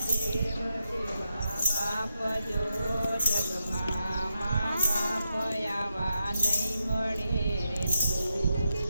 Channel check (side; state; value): both; inverted; correlation -0.85